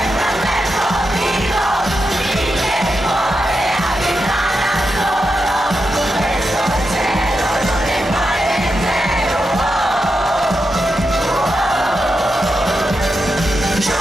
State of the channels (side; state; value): both; normal; correlation 0.87